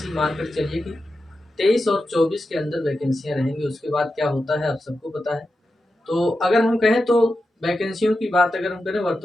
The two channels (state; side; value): normal; both; correlation 0.90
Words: मानकर चलिए कि 23 और 24 के अंदर वैकेंसियाँ रहेंगी। उसके बाद क्या होता है आप सबको पता है। तो अगर हम कहें तो वैकेंसियों की बात अगर हम करें